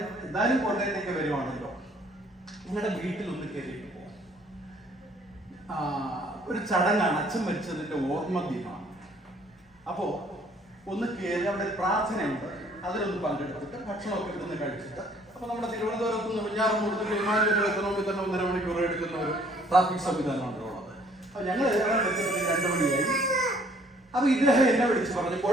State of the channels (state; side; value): normal; both; correlation 0.60